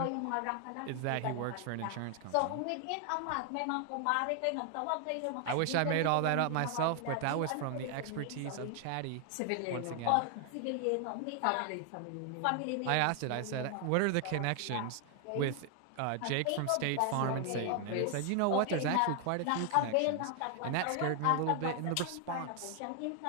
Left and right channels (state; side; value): different; both; correlation 0.00